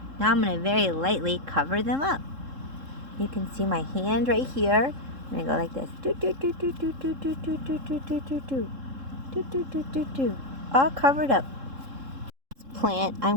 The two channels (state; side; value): late; left; 3.7 ms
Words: Now I'm going to very lightly cover them up. You can see my hand right here. I'm going to go like this. All covered up. This plant I'm